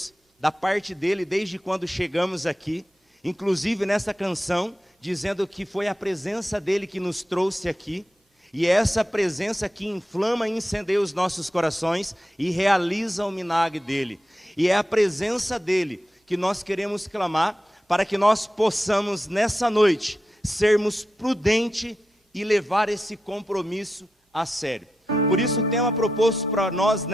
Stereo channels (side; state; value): both; normal; correlation 0.89